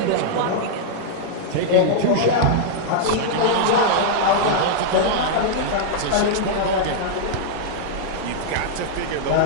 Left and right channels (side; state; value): both; different; correlation -0.02